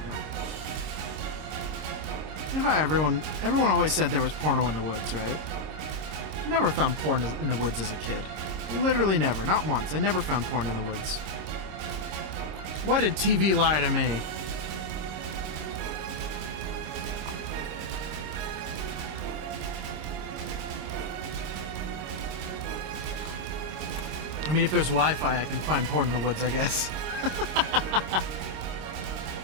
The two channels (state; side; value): late; left; 26 ms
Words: go. You know how everyone always said there was porno in the woods, right? I never found porn in the woods as a kid. Literally never. Not once. I never found porn in the woods. Why did TV lie to me? I mean, if there's Wi-Fi, I can find porn in the woods, I guess.